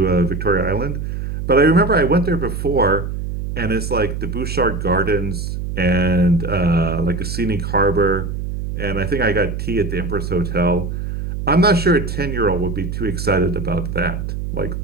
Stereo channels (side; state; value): right; noise; hum, 4 dB below the sound